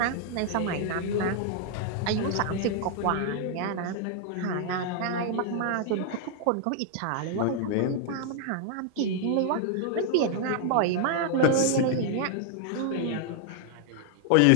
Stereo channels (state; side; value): different; both; correlation 0.00